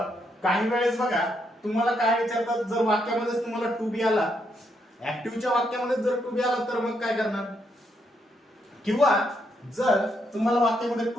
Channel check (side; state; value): both; normal; correlation 0.77